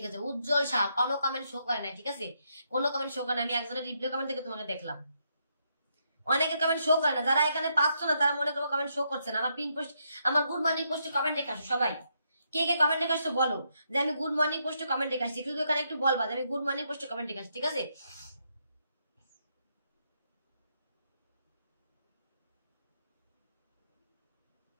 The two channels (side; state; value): both; inverted; correlation -0.78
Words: আছে। উজ্জ্বল শাহ কোনো কমেন্ট শো করে নাই, ঠিক আছে? কোনো কমেন্ট শো করে না। আমি একজনের রিপ্লাই কমেন্ট থেকে তোমাকে দেখলাম, অনেকের কমেন্ট শো করে না। যারা এখানে পাচ্ছ না তারা মনে করবো কমেন্ট শো করছে না। আমার পিন পোস্ট, আমার গুড মর্নিং পোস্টে কমেন্ট রেখে আসো সবাই। কে কে কমেন্ট রেখে আসছো বলো যে আমি গুড মর্নিং পোস্টে কমেন্ট রেখে আসছি। শুধু এখানে একটু বলবা যে আমি গুড মর্নিং পোস্টে কমেন্ট রেখে আসছি, ঠিক আছে?